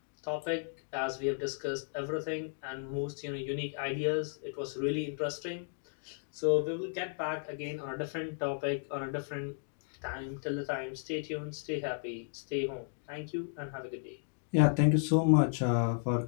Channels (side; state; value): right; silent; digital silence